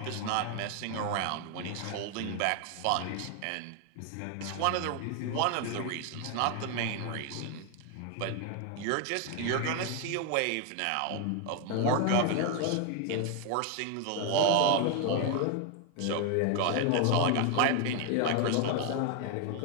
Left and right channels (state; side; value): different; both; correlation 0.01